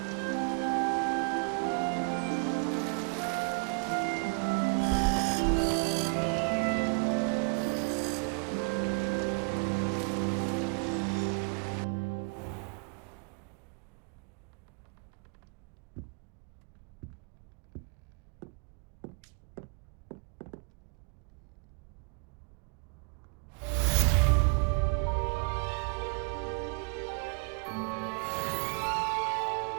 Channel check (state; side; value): quieter; left; 35.3 dB